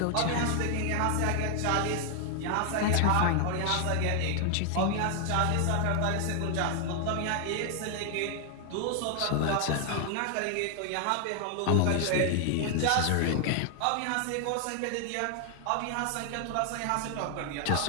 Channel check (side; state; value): both; different; correlation 0.00